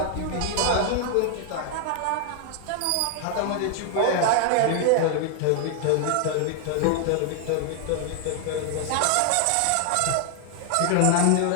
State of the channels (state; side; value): different; both; correlation 0.00